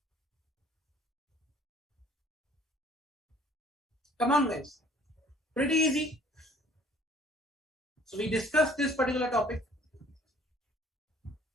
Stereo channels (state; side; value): normal; both; correlation 0.55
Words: Come on, guys. Pretty easy. So we discussed this particular topic.